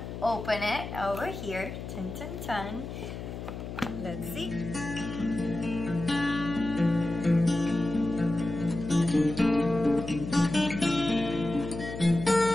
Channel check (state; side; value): noise; left; hum, 8 dB below the sound